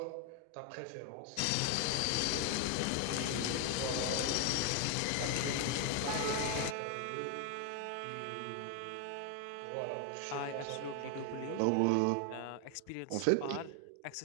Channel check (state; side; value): different; both; correlation 0.01